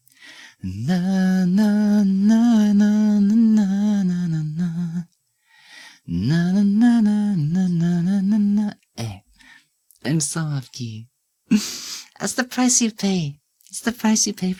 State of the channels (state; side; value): identical; both; correlation 1.00